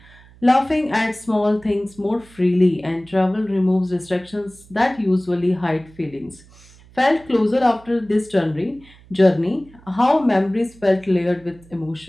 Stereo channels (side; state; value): right; noise; hum, 25 dB below the sound